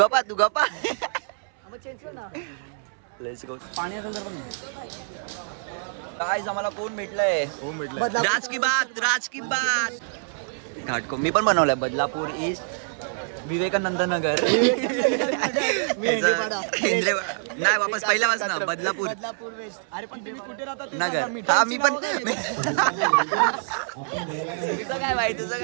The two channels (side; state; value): left; silent; 61 dB below the other